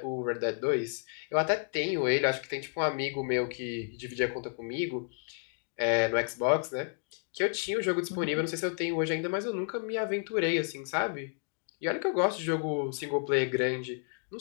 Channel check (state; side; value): silent; right; 57 dB below the other